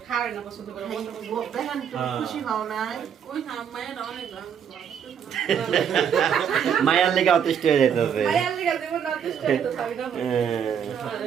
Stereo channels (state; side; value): quieter; left; 8.0 dB